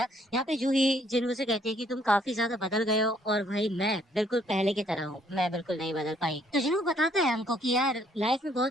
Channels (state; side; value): normal; both; correlation 0.65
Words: यहाँ पे जूही जिन्हों से कहती है कि तुम काफी ज्यादा बदल गए हो और भाई मैं बिल्कुल पहले की तरह हूँ, मैं बिल्कुल नहीं बदल पाई। तो जिन्हों बताता है हमको कि यार लाइफ में